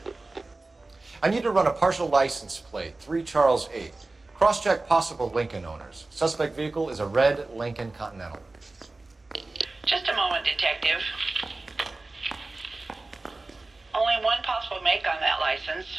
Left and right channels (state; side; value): quieter; left; 3.2 dB